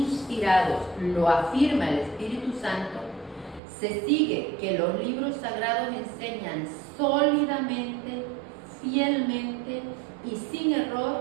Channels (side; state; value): left; drops out; at 3.6 s